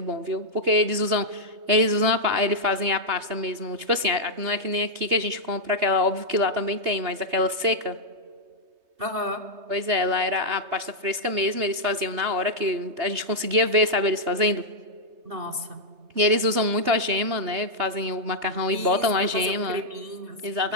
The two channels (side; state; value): left; late; 3.2 ms